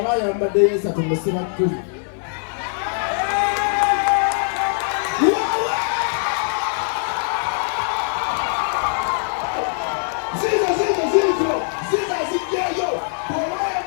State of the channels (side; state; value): right; silent; 59 dB below the other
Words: yambaddeyo 3 musiba 10